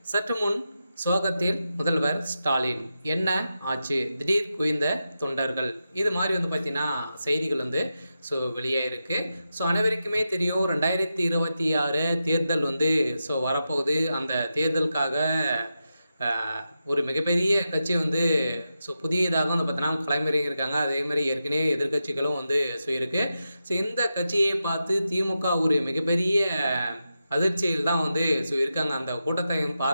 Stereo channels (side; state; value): both; inverted; correlation -0.89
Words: சற்று முன் சோகத்தில் முதல்வர் ஸ்டாலின், என்ன ஆச்சு, திடீர் குவிந்த தொண்டர்கள், இது மாதிரி பார்த்தீங்கன்னா செய்திகள் வெளியாயிருக்கு. அனைவருக்குமே தெரியும், 2026 தேர்தல் வரப்போகுது. அந்த தேர்தலுக்காக ஒரு மிகப்பெரிய கட்சி புதியதாக பார்த்தீங்கன்னா களமிறங்கியிருக்காங்க. அதேமாதிரி ஏற்கனவே எதிர்க்கட்சிகளும் இருக்கு. இந்த கட்சியை பார்த்து திமுக ஒரு மிகப்பெரிய அதிர்ச்சியில் தான் இருக்காங்க. அந்த கூட்டத்தை